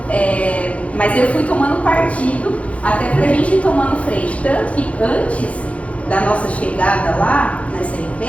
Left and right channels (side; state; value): right; late; 0.064 ms